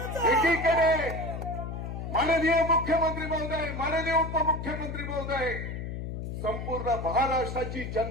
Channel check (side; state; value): left; noise; hum, 6 dB below the sound